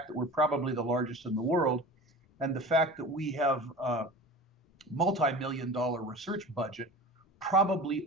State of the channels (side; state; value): both; normal; correlation 0.36